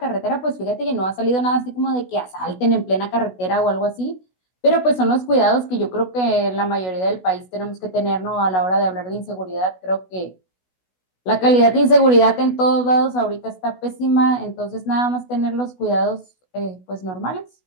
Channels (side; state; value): right; late; 16 ms